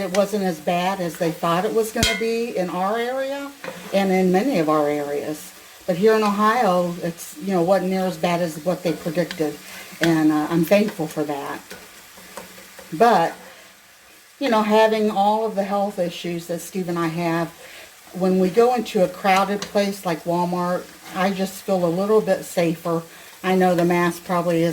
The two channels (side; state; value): both; identical; correlation 1.00